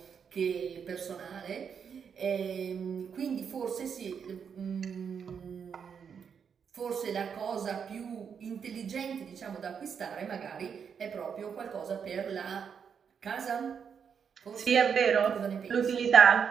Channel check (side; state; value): left; quieter; 7.0 dB